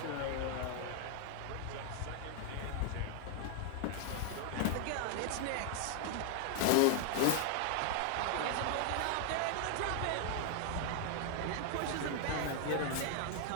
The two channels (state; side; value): different; both; correlation 0.00